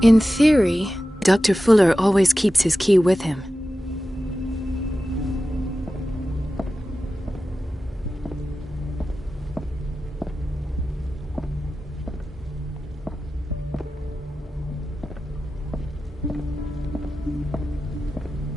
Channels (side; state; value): both; normal; correlation 0.94